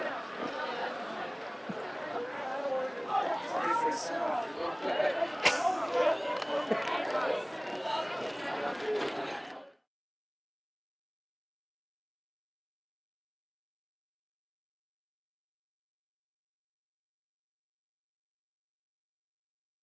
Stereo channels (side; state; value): both; identical; correlation 1.00